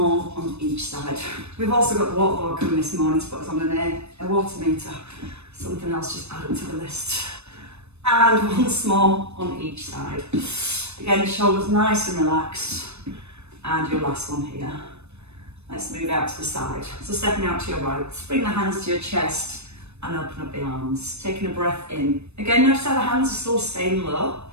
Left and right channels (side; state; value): left; late; 0.81 ms